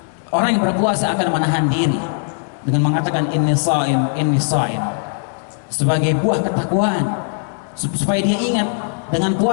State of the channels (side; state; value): right; silent; 67 dB below the other